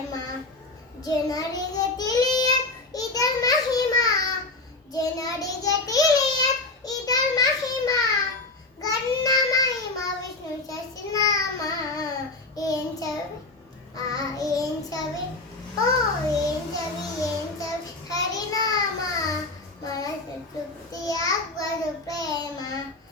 ಜನರಿಗೆ ತಿಳಿಯ ಇದರ ಮಹಿಮಾ, ಜನರಿಗೆ ತಿಳಿಯ ಇದರ ಮಹಿಮಾ. ಗನ್ನ ಮಹಿಮಾ ವಿಷ್ಣು ಸಹಸ್ರನಾಮ. ಏನ್ ಚವಿ ಏನ್ ಚವಿ ಓ ಏನ್ ಚವಿ ಹರಿನಾಮ ಮನಸ್ಸು ತೃಪ್ತಿಯಾಗುವುದು ಪ್ರೇಮ.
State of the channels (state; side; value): quieter; right; 3.2 dB